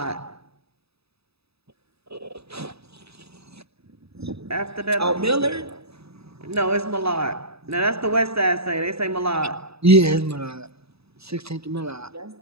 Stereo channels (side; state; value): left; late; 0.78 ms